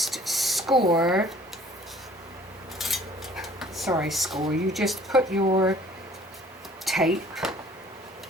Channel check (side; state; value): both; normal; correlation 0.53